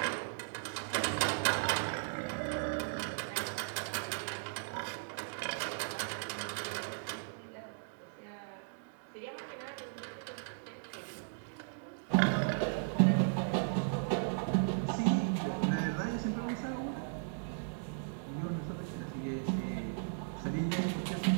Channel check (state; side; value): silent; left; digital silence